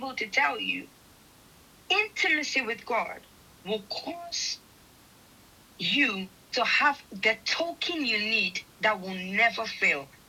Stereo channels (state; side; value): identical; both; correlation 1.00